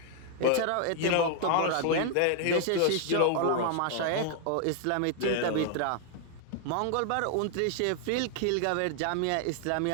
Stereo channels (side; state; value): both; different; correlation 0.00